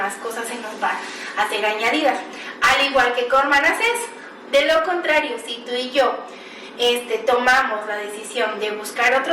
cosas se nos van a ser añadidas. Al igual que con Manasés. De lo contrario, si tú y yo tomamos la decisión de buscar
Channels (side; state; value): both; identical; correlation 1.00